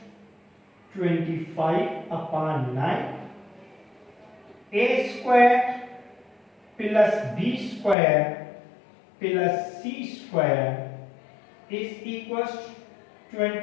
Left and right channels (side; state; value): right; drops out; at 8.0 s